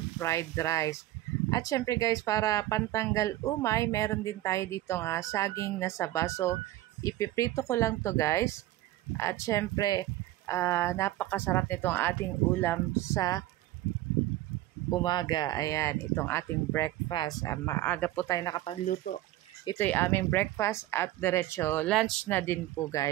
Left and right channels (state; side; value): quieter; left; 15.6 dB